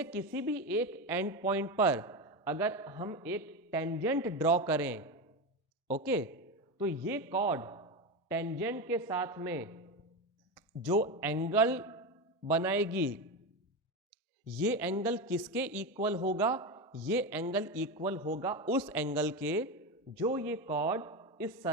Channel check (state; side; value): normal; both; correlation 0.17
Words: किसी भी एक एंड पॉइंट पर अगर हम एक टेंजेंट ड्रॉ करें, ओके, तो ये कॉर्ड टेंजेंट के साथ में जो एंगल बनाएगी, ये एंगल किसके इक्वल होगा? ये एंगल इक्वल होगा उस एंगल के जो ये कॉर्ड इस